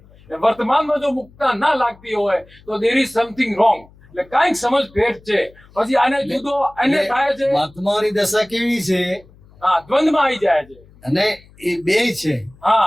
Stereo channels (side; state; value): left; noise; hum, 26 dB below the sound